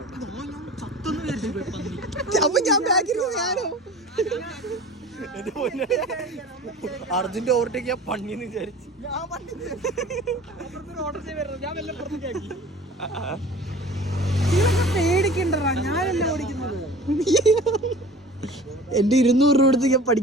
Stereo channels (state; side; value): normal; both; correlation 0.42